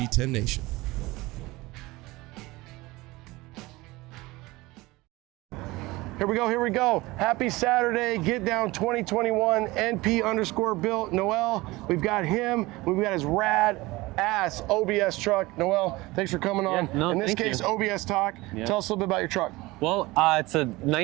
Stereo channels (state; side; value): quieter; left; 20.9 dB